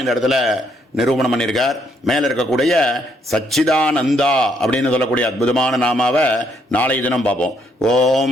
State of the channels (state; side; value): normal; both; correlation 0.72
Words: இந்த இடத்துல நிரூபணம் பண்ணியிருக்கார். மேலே இருக்கக்கூடிய சச்சிதானந்தா அப்படின்னு சொல்லக்கூடிய அற்புதமான நாமாவை நாளை தினம் பார்ப்போம்.